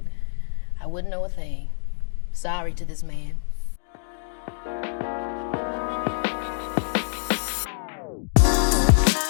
know a thing. Sorry to this man.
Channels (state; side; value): silent; right; digital silence